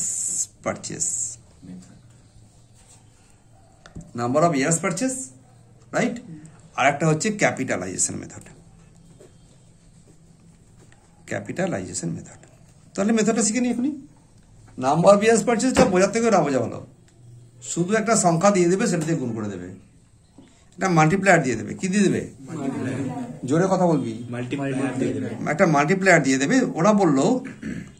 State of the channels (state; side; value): identical; both; correlation 1.00